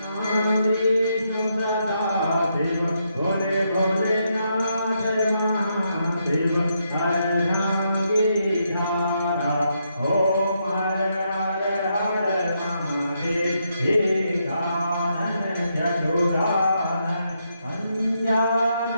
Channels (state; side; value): inverted; both; correlation -0.79